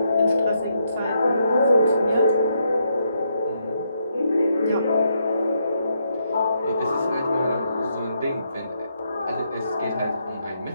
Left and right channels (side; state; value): both; inverted; correlation -0.77